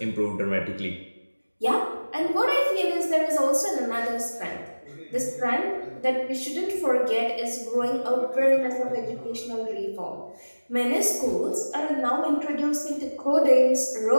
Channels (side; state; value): both; inverted; correlation -1.00